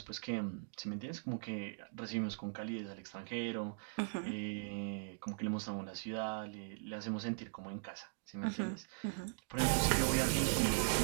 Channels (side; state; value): left; silent; digital silence